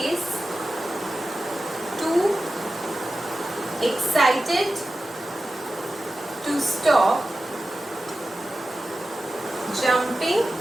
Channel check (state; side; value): normal; both; correlation 0.94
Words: too excited to stop jumping